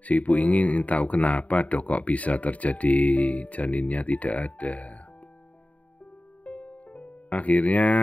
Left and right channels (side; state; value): right; late; 0.068 ms